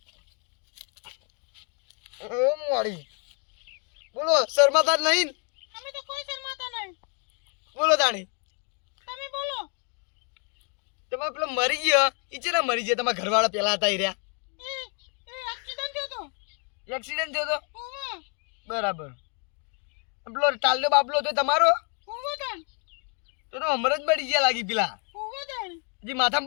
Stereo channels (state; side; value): quieter; right; 39.7 dB